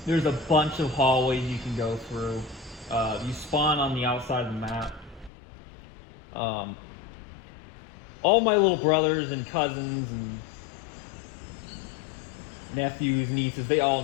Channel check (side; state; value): right; drops out; at 5.3 s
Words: There's a bunch of hallways you can go through. You spawn on the outside of the map. All my little brothers and cousins and nephews, nieces, they all